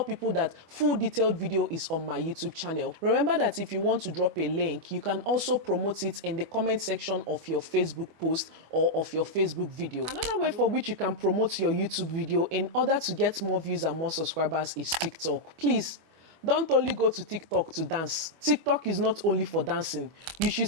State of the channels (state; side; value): late; left; 25 ms